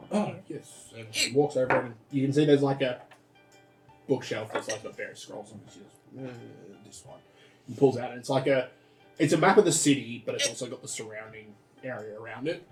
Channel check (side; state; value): both; identical; correlation 1.00